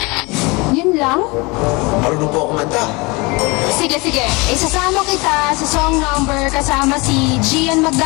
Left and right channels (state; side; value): quieter; right; 26.1 dB